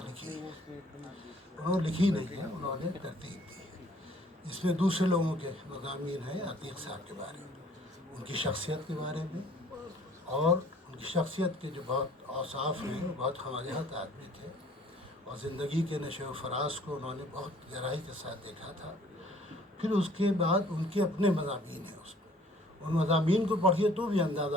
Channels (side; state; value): both; normal; correlation 0.56